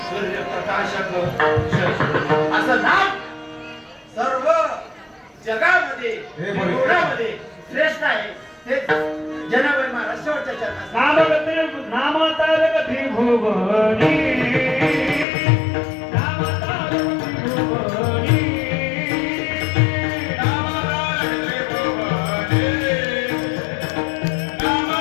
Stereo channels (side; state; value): right; drops out; at 15.2 s